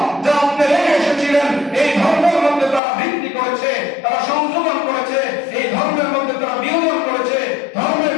যা আপনি রেখে এসেছিলেন, এই ধর্মের মধ্যে তারা বৃদ্ধি করেছে, তারা সংযোজন করেছে, এই ধর্মের মধ্যে তারা বিয়োজন করেছে, ধর্মের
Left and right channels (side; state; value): right; drops out; at 2.8 s